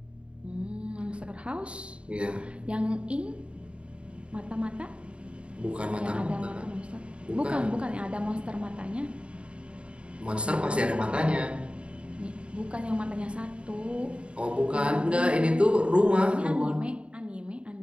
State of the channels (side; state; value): left; late; 0.058 ms